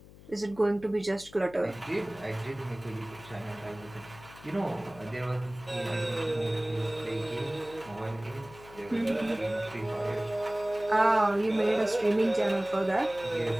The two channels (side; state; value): left; noise; hum, 20 dB below the sound